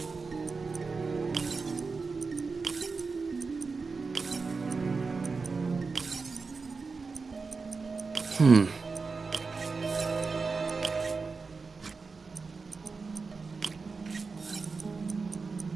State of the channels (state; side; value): quieter; left; 4.5 dB